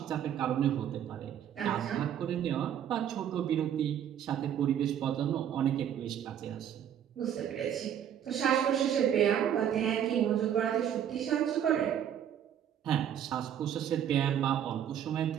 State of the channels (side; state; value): left; quieter; 9.7 dB